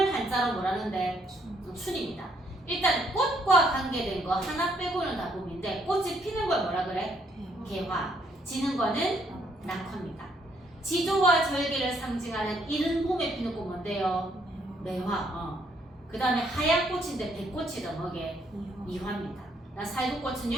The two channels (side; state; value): both; normal; correlation 0.70